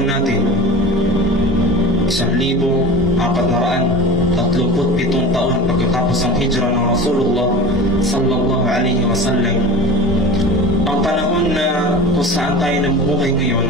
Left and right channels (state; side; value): normal; both; correlation 0.33